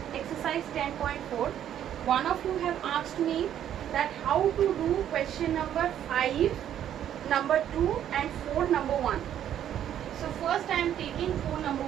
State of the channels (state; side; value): quieter; left; 10.5 dB